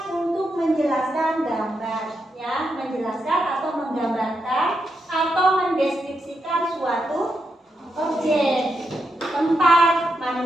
untuk menjelaskan gambar, ya, menjelaskan atau menggambarkan atau mendeskripsikan suatu objek, tempat,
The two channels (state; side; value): normal; both; correlation 0.84